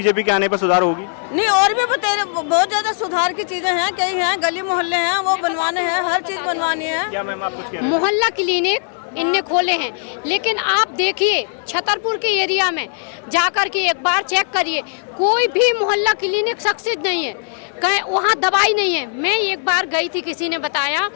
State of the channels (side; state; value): right; silent; digital silence